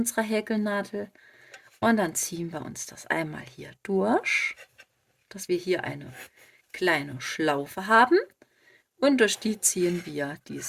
Häkelnadel. Und dann ziehen wir uns das einmal hier durch, dass wir hier eine kleine Schlaufe haben. Und durch die ziehen wir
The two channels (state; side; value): identical; both; correlation 1.00